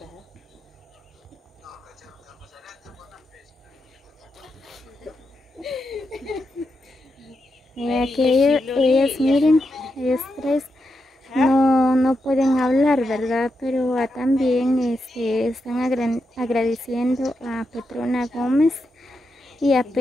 Que ellos miren, ellos tres no pueden hablar, ¿verdad? Pero también están agradeciendo a Petrona Gómez y a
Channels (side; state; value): both; normal; correlation 0.85